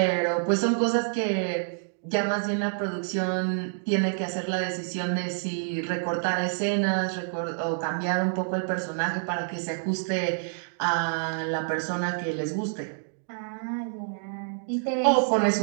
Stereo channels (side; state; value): left; silent; digital silence